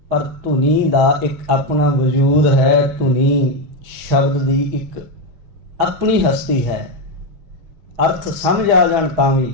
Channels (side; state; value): left; late; 6.2 ms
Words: ਪਰ ਧੁਨੀ ਦਾ ਇੱਕ ਆਪਣਾ ਵਜੂਦ ਹੈ। ਧੁਨੀ ਸ਼ਬਦ ਦੀ ਇੱਕ ਆਪਣੀ ਹਸਤੀ ਹੈ। ਅਰਥ ਸਮਝ ਆ ਜਾਣ ਤਾਂ